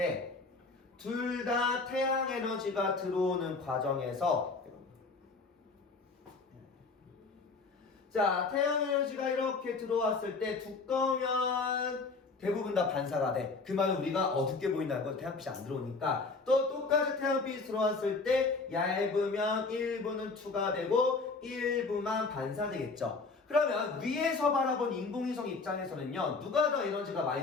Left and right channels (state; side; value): quieter; right; 4.0 dB